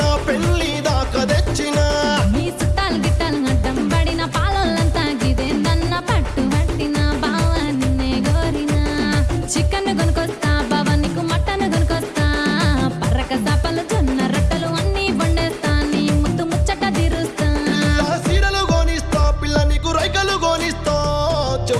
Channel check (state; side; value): identical; both; correlation 1.00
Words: పెళ్లి దాకా తెచ్చిన నీ చుట్టాలు గిట్టాలు అడ్డం పడిన పాలొల్లంతా గిదే నన్న పట్టు పట్టిన బావ నిన్నే గోరినా చికెన్ కొనుకొస్తా బావ నీకు మటన్ కొనుకొస్తా పర్రక సాపలు జొన్న రొట్టెలు అన్నీ వండేస్తా నీ ముద్దు ముచ్చట తీరుస్తా సీరలు గోనిస్తా పిల్ల నీకు రైకలు గోనిస్తా